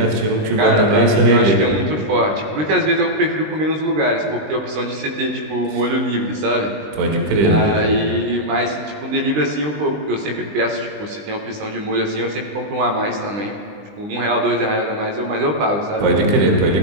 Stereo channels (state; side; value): late; left; 20 ms